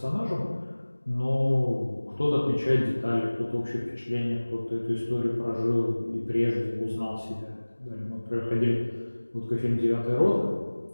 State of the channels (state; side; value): inverted; both; correlation -1.00